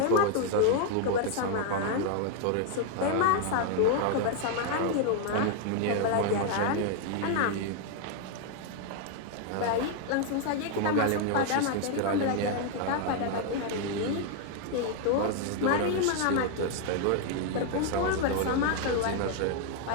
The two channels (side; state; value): both; different; correlation 0.00